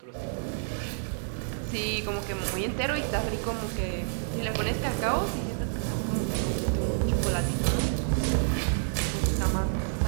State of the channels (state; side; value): silent; left; digital silence